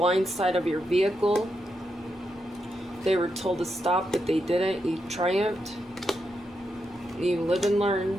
side of your vehicle. They were told to stop, but they didn't. You triumphed. You live and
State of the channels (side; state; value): both; normal; correlation 0.84